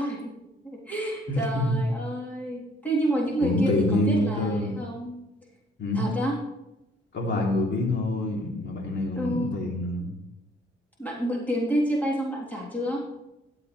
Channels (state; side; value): normal; both; correlation 0.62